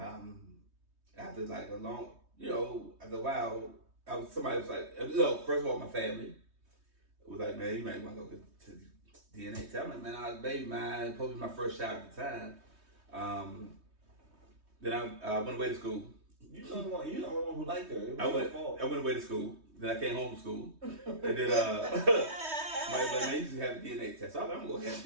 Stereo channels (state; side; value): late; left; 3.2 ms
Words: like a long, after a while, somebody was like, first of all, my family was like, "Man, you might want to go to DNA test." I'm like, "Man, I was a baby mine, supposed to be my first child at the time." Then I went away to school. you're the only one who liked her. It was I your went fault. away to school. Then I came home from school. And then somebody was like, "Man, you should have a DNA test." So I was like, "I'm gonna have